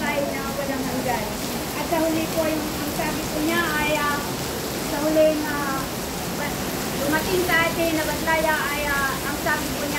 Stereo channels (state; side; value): identical; both; correlation 1.00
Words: na walang hanggan. At sa huli po yung ang sabi ko niya ay sa huling dumating sa atin na bantaya ay ang sabi ko